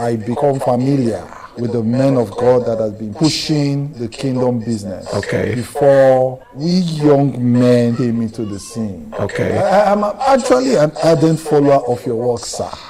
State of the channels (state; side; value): identical; both; correlation 1.00